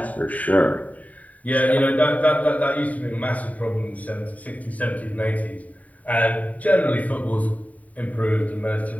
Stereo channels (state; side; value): late; right; 0.071 ms